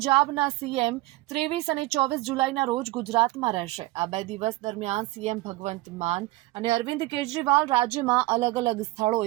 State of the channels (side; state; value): left; quieter; 19.5 dB